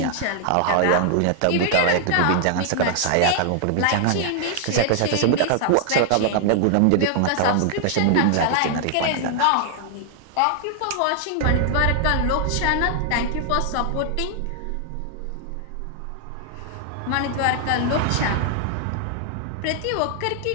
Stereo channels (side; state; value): both; different; correlation -0.01